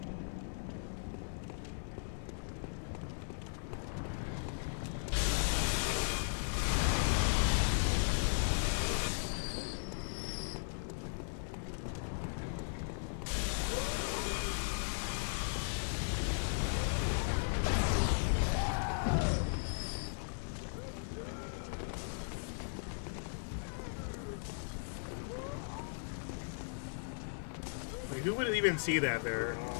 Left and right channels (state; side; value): silent; right; digital silence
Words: Who would even see that there? You know